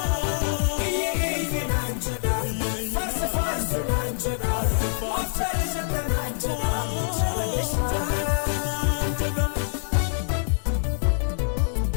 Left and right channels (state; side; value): silent; right; 62 dB below the other